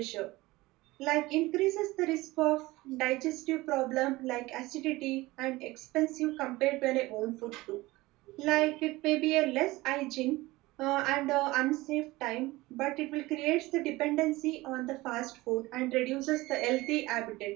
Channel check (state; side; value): quieter; left; 20.0 dB